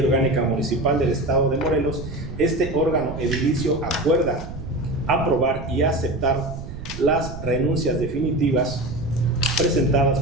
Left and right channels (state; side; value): noise; right; rumble, 10 dB below the sound